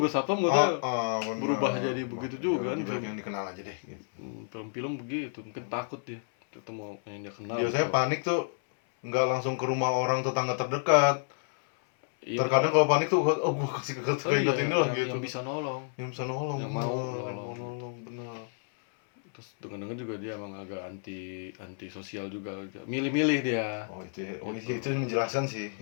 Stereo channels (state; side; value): silent; right; 58 dB below the other